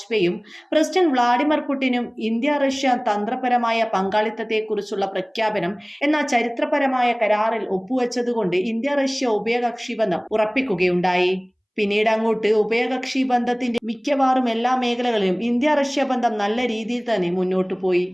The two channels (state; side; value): identical; both; correlation 1.00